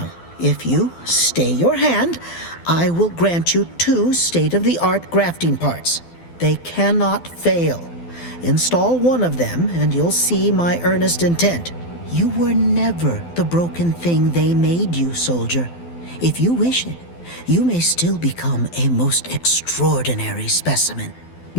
if you stay your hand, I will grant you 2 state-of-the-art grafting parts. They cannot fail. Install one of them, and you'll see my earnest intent. You were never the broken thing they made you, soldier. If you wish it, you may still become a most extraordinary specimen.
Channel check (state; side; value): late; right; 12 ms